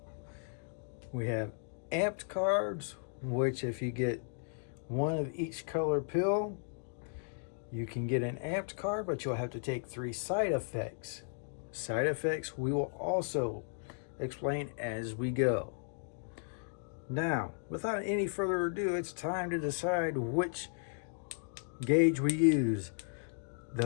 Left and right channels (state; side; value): silent; right; digital silence